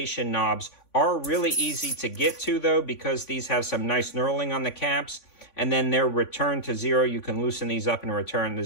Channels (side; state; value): right; late; 3.5 ms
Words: knobs are really easy to get to, though, because these have some nice knurling on the caps, and then they're returned to zero. You can loosen these up and return to